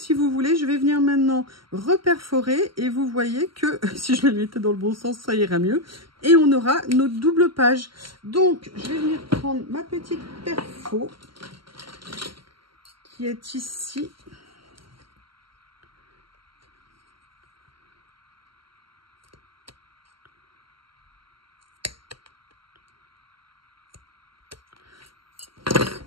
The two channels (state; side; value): late; left; 0.74 ms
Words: vous voulez, je vais venir maintenant reperforer. Et vous voyez que si je le mettais dans le bon sens, ça ira mieux. Et on aura notre double page. Donc, je vais venir prendre ma petite perfo qui est ici.